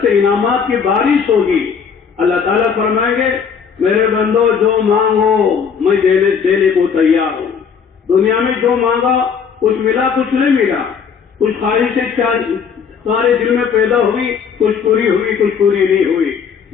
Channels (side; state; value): right; quieter; 6.6 dB